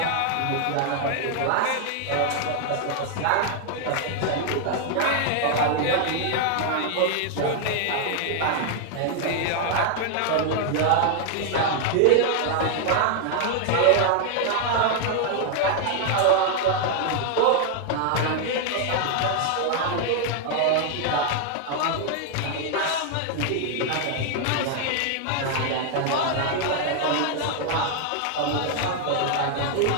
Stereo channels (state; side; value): different; both; correlation 0.00